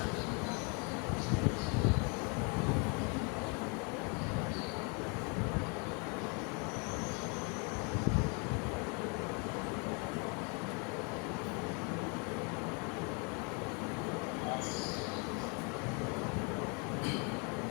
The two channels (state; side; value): quieter; right; 34.1 dB